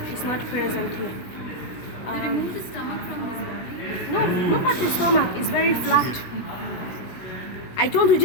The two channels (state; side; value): late; right; 16 ms